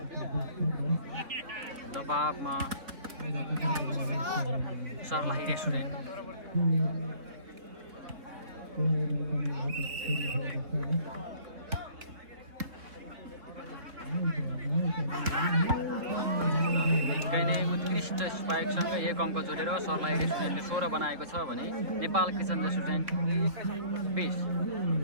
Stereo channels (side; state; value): left; late; 4.0 ms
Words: दबावमा सर्लाही रेस्टुरेन्ट। निकै नै उत्कृष्ट स्पाइकसँग 1 अङ्क जोडेर सर्लाही रेस्टुरेन्टले 16 बनाएको छ भने नेपाल किचन रेस्टुरेन्ट 20